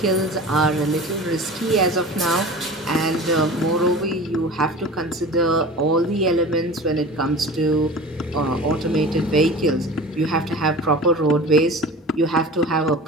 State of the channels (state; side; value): normal; both; correlation 0.37